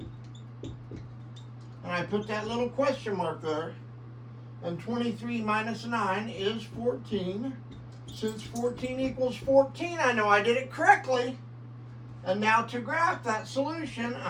And I put that little question mark there. And 23 minus 9 is 14. Since 14 equals 14, I know I did it correctly. And now to graph that solution,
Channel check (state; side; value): identical; both; correlation 1.00